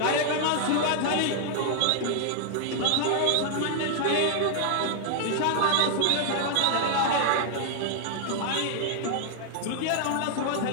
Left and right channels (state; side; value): different; both; correlation 0.00